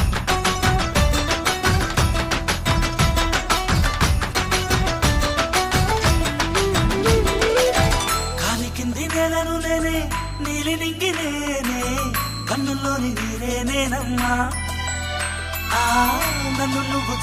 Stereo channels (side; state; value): both; identical; correlation 1.00